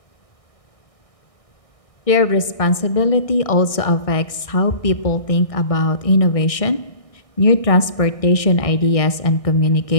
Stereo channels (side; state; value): right; late; 1.6 ms